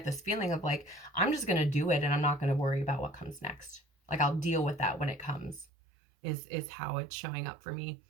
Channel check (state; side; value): drops out; left; at 5.7 s